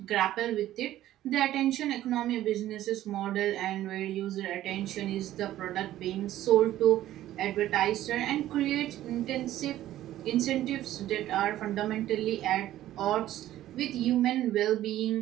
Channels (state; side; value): quieter; left; 13.7 dB